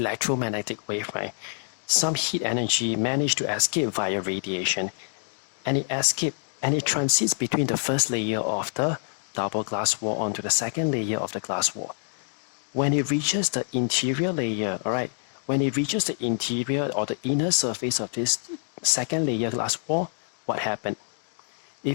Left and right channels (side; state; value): right; silent; digital silence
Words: wave, right, some heat energy managed to escape via radiation, and it transits between the first layer of the double glass wall onto the second layer of the glass wall. When it reaches the interior layer, all right, when it reaches the interior or the inner surface of this second layer glass wall, what happened?